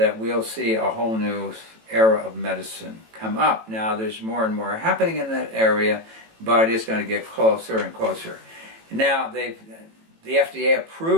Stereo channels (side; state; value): left; late; 18 ms